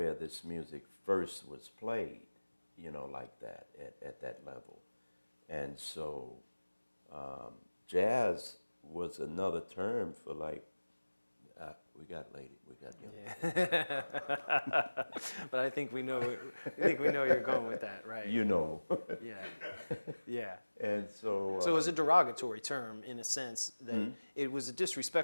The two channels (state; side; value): inverted; both; correlation -1.00